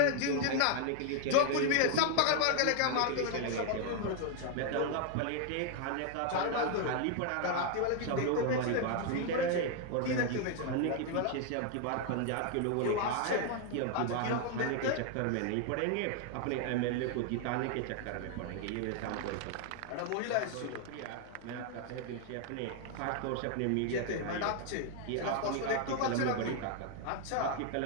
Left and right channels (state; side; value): different; both; correlation 0.00